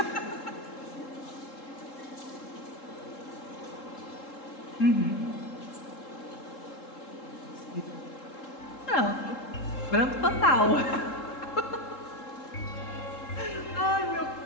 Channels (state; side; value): late; right; 3.7 ms